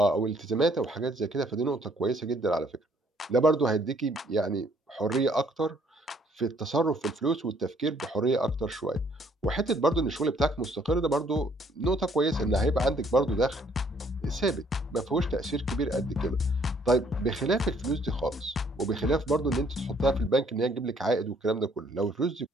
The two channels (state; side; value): normal; both; correlation 0.64